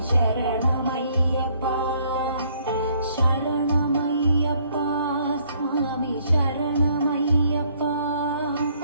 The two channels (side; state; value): both; inverted; correlation -0.65